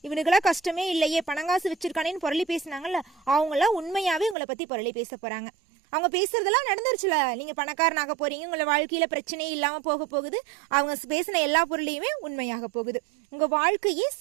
இவனுக்கெல்லாம் கஷ்டமே இல்லையே, பணங்காசு வச்சிருக்கானேன்னு பொருளி பேசினாங்கல்ல, அவங்களாம் உண்மையாவே உங்களை பத்தி பொருளி பேச போறாங்க. அவங்க பேசுறதெல்லாம் நடந்துருச்சுல, நீங்க பணக்காரனாக போறீங்க, உங்களை வாழ்க்கையில பிரச்சனையே இல்லாம போக போகுது. அவங்க பேசின எல்லா பொருளையுமே உண்மையாக போகுது. உங்க வாழ்க்கையே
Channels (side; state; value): left; drops out; at 4.4 s